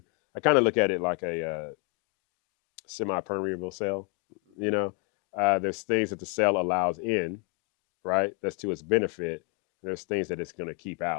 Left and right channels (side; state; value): right; quieter; 36.1 dB